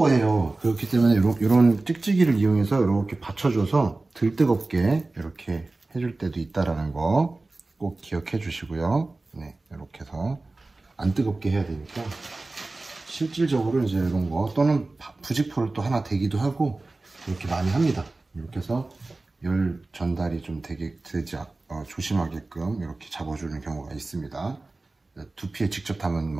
그렇기 때문에 이런 찍찍이를 이용해서 이렇게 받쳐줘서 덜 뜨겁게 이렇게 해줄 때도 있다라는 거 꼭 기억해 주시고요. 네, 이렇게 해서 안 뜨겁게 해야 되니까 실질적으로 이제 이런 거 또는 부직포를 또 하나 대기도 하고 이렇게 많이 합니다. 이렇게 해서 열 전달이 좀 되지 조심하게끔 이렇게 잡아주는 경우가 있습니다. 두피에 직접 닿으면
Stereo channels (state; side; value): quieter; left; 3.2 dB